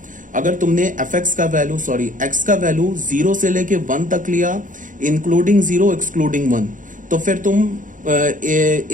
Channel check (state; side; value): late; left; 0.38 ms